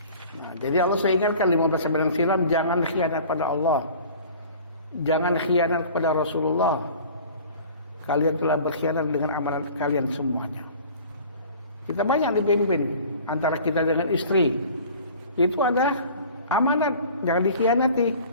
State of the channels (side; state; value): both; inverted; correlation -0.45